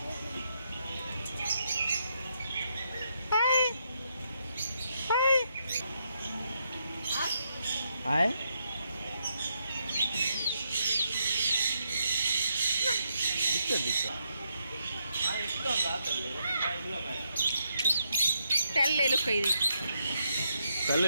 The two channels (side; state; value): both; inverted; correlation -0.80